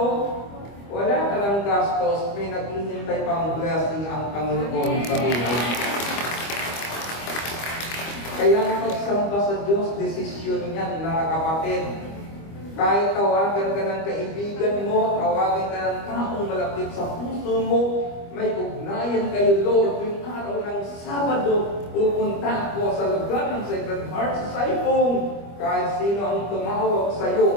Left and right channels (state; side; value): late; right; 25 ms